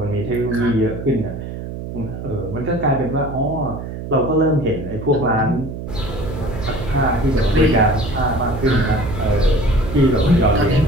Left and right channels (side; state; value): right; noise; hum, 8 dB below the sound